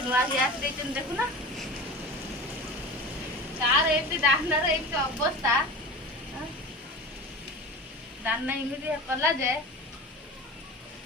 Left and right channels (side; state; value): both; normal; correlation 0.33